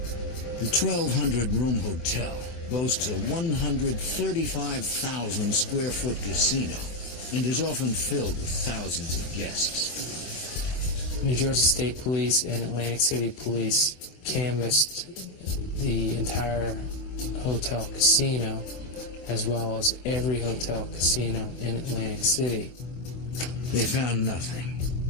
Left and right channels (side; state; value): right; late; 24 ms